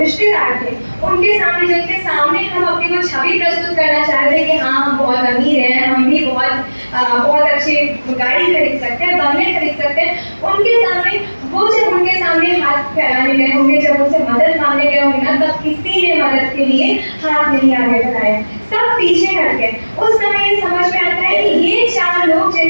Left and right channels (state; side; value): inverted; both; correlation -1.00